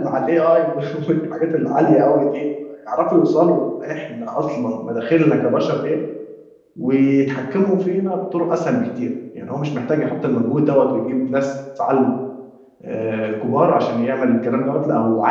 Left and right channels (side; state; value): both; identical; correlation 1.00